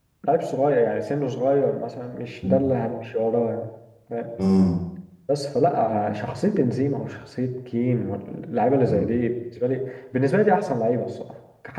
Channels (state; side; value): identical; both; correlation 1.00